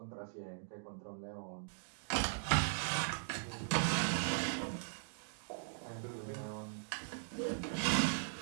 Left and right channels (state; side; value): silent; left; digital silence